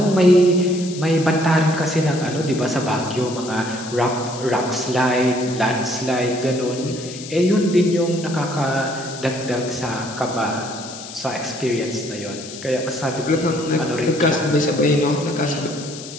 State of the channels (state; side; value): noise; left; hiss, 13 dB below the sound